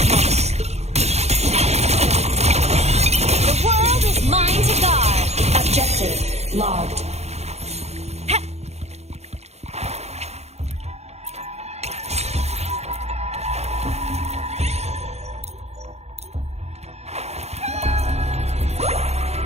The world is mine to guard. Objective logged.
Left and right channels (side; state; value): left; late; 0.31 ms